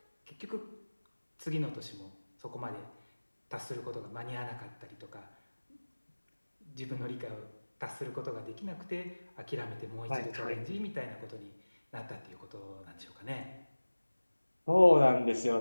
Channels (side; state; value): both; inverted; correlation -1.00